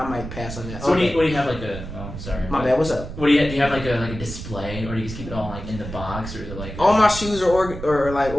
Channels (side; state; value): right; noise; rumble, 9 dB below the sound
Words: might pass on that. So what do you have sorry. My bad. What's up? What do you have a display, or do you just keep it all in the box, or is it all my shoes are